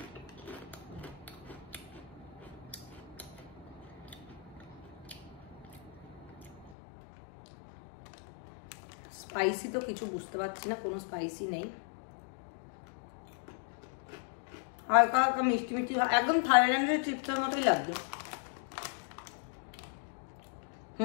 স্পাইসি তো কিছু বুঝতে পারছি না, কোনো স্পাইসি নেই, হালকা হালকা মিষ্টি মিষ্টি, একদম থাইল্যান্ডের চিপসের মতোই লাগবে।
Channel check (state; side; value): drops out; right; at 6.8 s